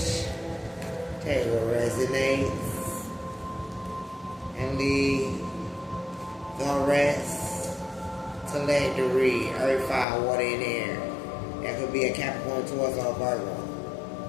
Tell you what resonates. And the rest. Teledry, earth, fire, water, and air. That could be a Capricorn, Taurus, or Virgo.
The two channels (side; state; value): right; drops out; at 10.1 s